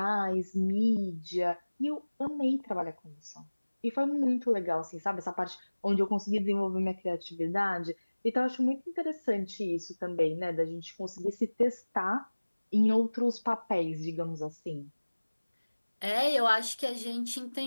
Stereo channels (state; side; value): inverted; both; correlation -1.00